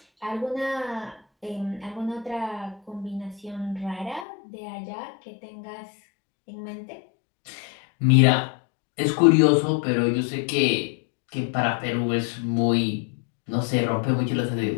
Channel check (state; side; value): drops out; right; at 4.2 s